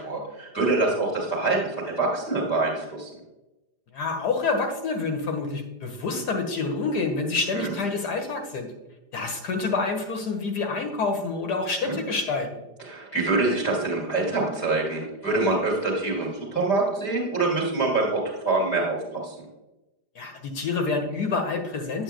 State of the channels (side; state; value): right; late; 5.0 ms